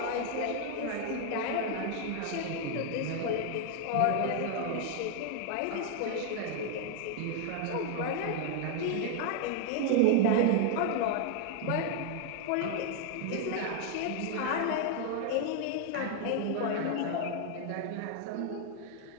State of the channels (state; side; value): different; both; correlation 0.00